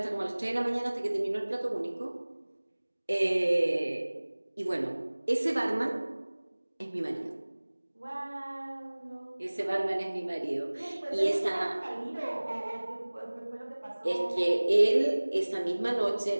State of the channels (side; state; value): both; inverted; correlation -1.00